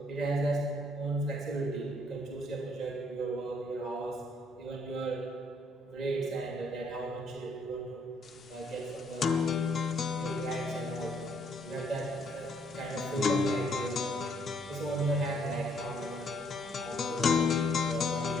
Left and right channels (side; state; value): both; normal; correlation 0.68